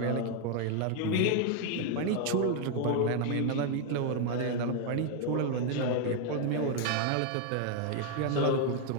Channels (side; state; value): both; different; correlation 0.01